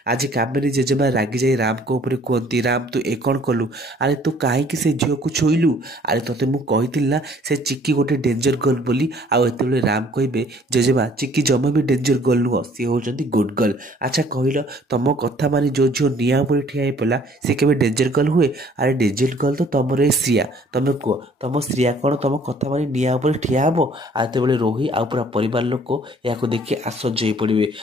आज कामिनी जेजेमा रागी जाई राम को ऊपर कहती राम तू ए कौन कलु अरे तू कहीं से झील को छुईलु अरे तोते मुझे ना से चिक्की गोटे डेंजर गर्ल बोली आते राम कहे जेजेमा चिक्की जमा भी डेंजर गर्ल नुह सी होती गुड गर्ल। अच्छा कहल तुम कथा मानी जो झील निआ उपर ठिया पड़ा सी के डेंजर गर्ल हुए अरे डेंजर गर्ल तो तुम ए श्रिया तुम कह तुम श्रिया कौन तुम कथा मानी निआ उपर ठिया हम आते रोही आ पूरा परिवार लोक या देखिए आश्चर्य हो पड़े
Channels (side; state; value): both; normal; correlation 0.57